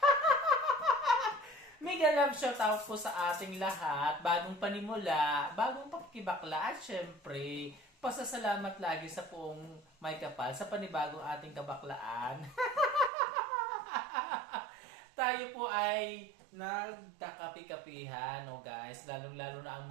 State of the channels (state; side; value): drops out; left; at 13.1 s